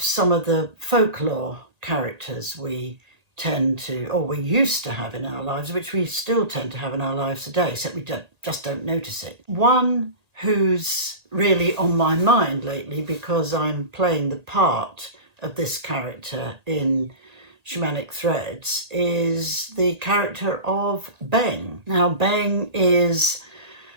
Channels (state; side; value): late; left; 1.8 ms